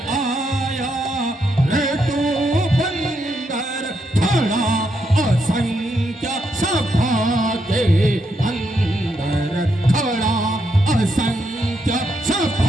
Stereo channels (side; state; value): both; normal; correlation 0.80